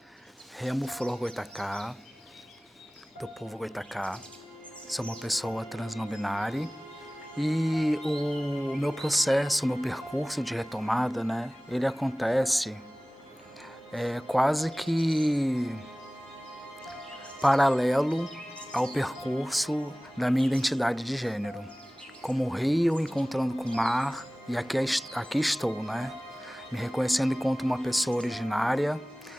Remo Flor Goitacá, do povo Goitacá. Sou uma pessoa trans não binária e o meu processo, o meu percurso de retomada, né, ele acontece quase que paralelo ao percurso da minha identidade de gênero. Como o rio encontrando com o mar, e aqui estou, né? Me reconhecendo enquanto uma pessoa originária,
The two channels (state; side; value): normal; both; correlation 0.98